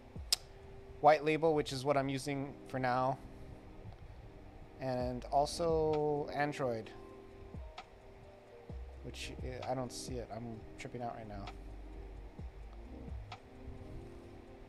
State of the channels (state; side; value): identical; both; correlation 1.00